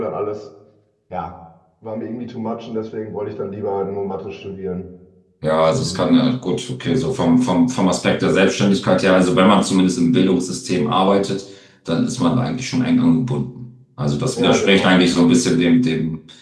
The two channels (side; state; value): both; identical; correlation 1.00